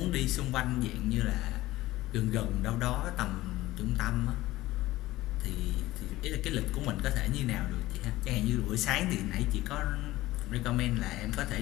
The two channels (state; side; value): quieter; right; 17.2 dB